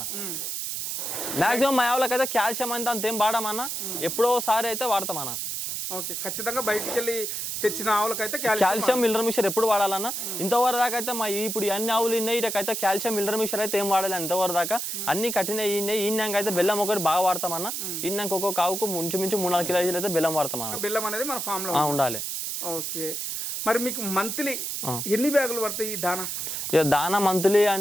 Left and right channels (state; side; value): noise; right; hiss, 3 dB below the sound